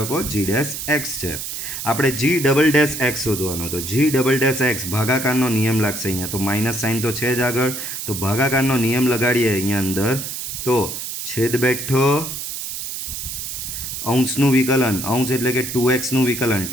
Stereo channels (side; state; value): right; noise; hiss, 6 dB below the sound